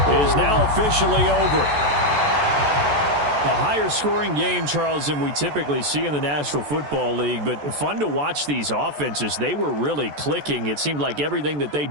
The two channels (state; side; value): late; left; 14 ms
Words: is now officially over. A higher scoring game, Charles, than we typically see in the National Football League, but fun to watch these offenses. They were really clicking. It seemed like everything that they